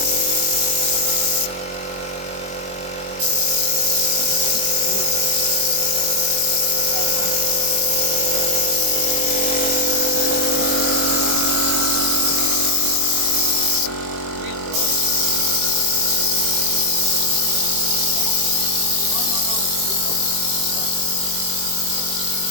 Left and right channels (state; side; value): late; left; 21 ms